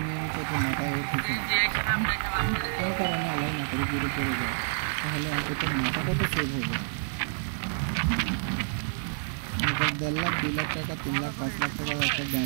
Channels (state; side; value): silent; left; digital silence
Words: নিয়ে নিচ্ছে, তো মাথায় ওর পিছনে কোনো কারণে আলাই না করে দূরে পড়ে যায়, তাহলে অন্তত মাথাটা তো সেভ হবে। এবার 1.5 লাখ 2 লাখ টাকা 3 লাখ 5 লাখ টাকার একটা